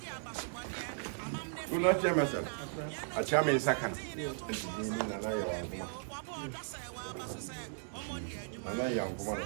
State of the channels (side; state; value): left; silent; digital silence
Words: Una chemesel. A chame sakana. Ni na na ya wanguma. Na ya wanguma na